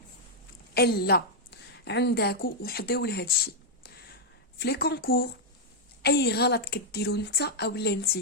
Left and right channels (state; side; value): normal; both; correlation -0.04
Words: الا عندكم وحديو لهذا الشيء في لي كونكور اي غلط كديروا انت اولا